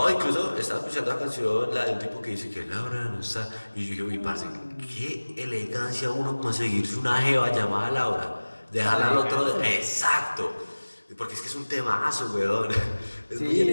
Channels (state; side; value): inverted; both; correlation -1.00